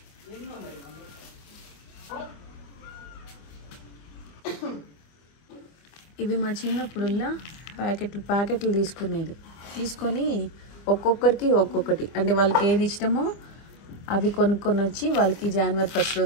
ఇవి మా చిన్నప్పుడుల్లా ప్యాకెట్లు తీసుకొని ఒక్కొక్కరికి ఒక్కొక్కటి, అంటే వాళ్ళకి ఏది ఇష్టమో అవి కొనుక్కొని వచ్చి వాళ్ళకి జనవరి 1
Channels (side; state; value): right; late; 25 ms